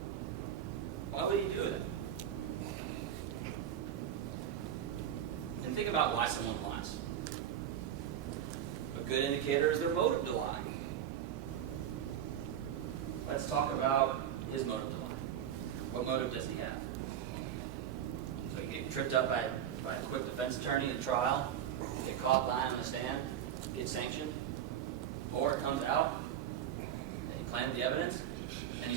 Why would he do that? And think about why someone lies. A good indicator is their motive to lie. Let's talk about his motive to lie. What motive does he have? So you get tripped up by a quick defense attorney in trial, get caught lying on the stand, get sanctioned, or it comes out that he planted the evidence and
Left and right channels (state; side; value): quieter; left; 9.9 dB